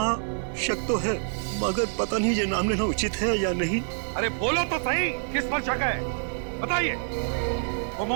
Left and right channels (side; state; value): left; silent; digital silence